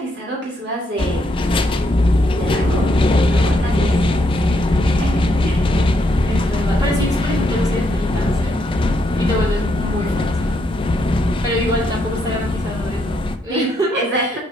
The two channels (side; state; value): both; normal; correlation 0.77